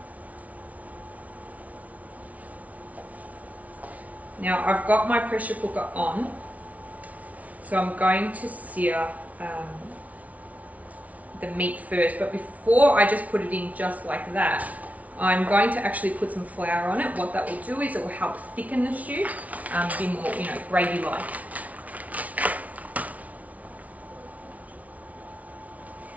Now I've got my pressure cooker on, so I'm going to sear the meat first, but before I just put it in just like that, I'm going to actually put some flour on it. What that will do is it will help thicken the stew, be more, you know, gravy-like.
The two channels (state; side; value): late; left; 0.070 ms